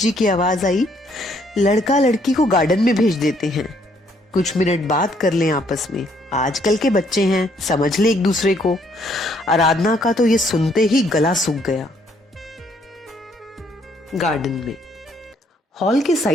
की आवाज आई, लड़का लड़की को गार्डन में भेज देते हैं, कुछ मिनट बात कर लें आपस में, आजकल के बच्चे हैं, समझ ले एक दूसरे को। आराधना का तो ये सुनते ही गला सूख गया। गार्डन में, हॉल के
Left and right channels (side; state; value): both; normal; correlation 0.67